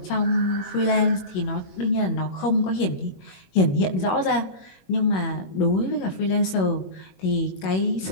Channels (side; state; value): right; late; 21 ms